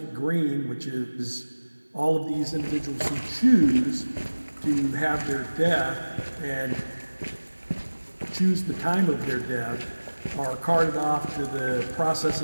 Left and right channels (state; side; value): inverted; both; correlation -1.00